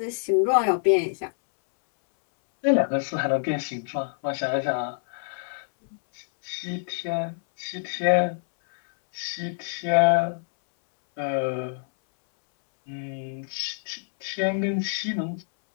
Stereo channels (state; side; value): silent; right; 61 dB below the other